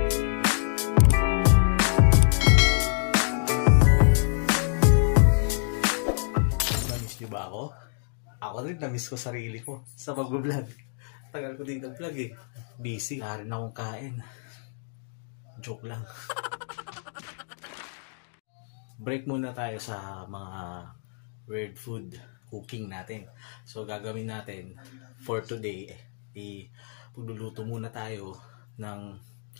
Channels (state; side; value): silent; right; 60 dB below the other